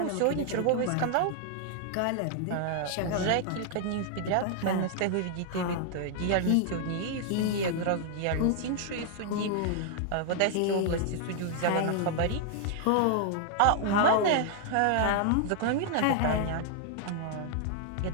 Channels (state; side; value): different; both; correlation 0.00